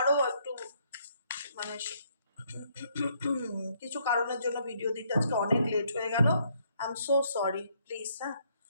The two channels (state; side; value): inverted; both; correlation -0.70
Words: একটু মানে কিছু কারণের জন্য ভিডিও দিতে আজকে অনেক লেট হয়ে গেল। I am so sorry, please. হ্যাঁ,